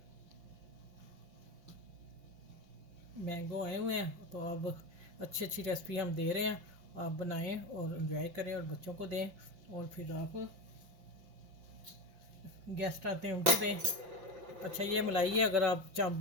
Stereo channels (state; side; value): late; left; 5.7 ms